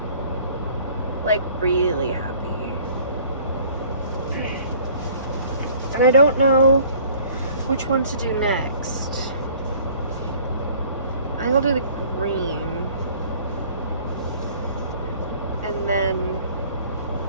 Like, really happy. And I don't know which one to do next. I think I'll do the green. And then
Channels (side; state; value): both; inverted; correlation -0.53